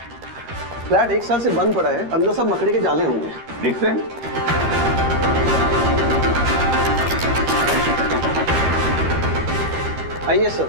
फ्लैट 1 साल से बंद पड़ा है, अंदर सब मकड़ी के जाले होंगे। दिखते हैं? आइए सर,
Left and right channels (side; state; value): left; late; 13 ms